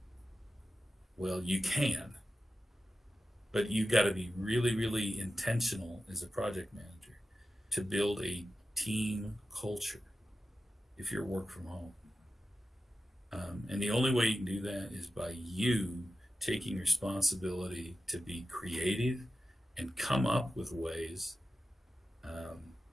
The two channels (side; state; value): both; normal; correlation 0.93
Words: well, you can, but you've got to be really, really intentional as a project manager to build a team culture if you're work from home. And the only way you can do that is by you taking responsibility to be creative and come up with ways